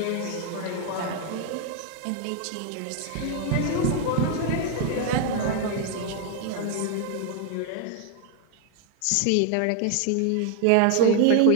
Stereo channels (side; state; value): both; different; correlation 0.01